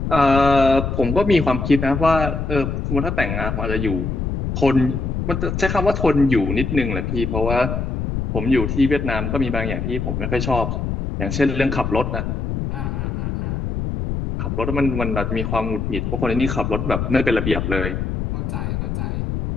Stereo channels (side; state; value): left; noise; rumble, 2 dB below the sound